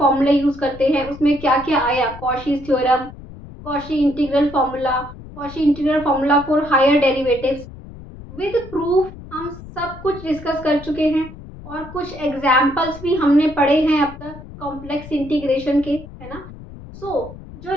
यूज करते हैं, उसमें क्या क्या आया, Cauchy's theorem, Cauchy integral formula for higher derivatives with proof, हम सब कुछ डिस्कस कर चुके हैं और कुछ एग्जाम्पल्स भी हमने पढ़े हैं अब तक कॉम्प्लेक्स इंटीग्रेशन के, है ना। जो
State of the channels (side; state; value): left; noise; rumble, 15 dB below the sound